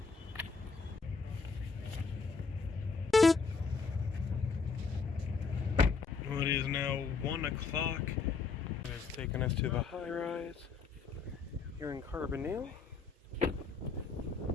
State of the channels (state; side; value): quieter; right; 4.8 dB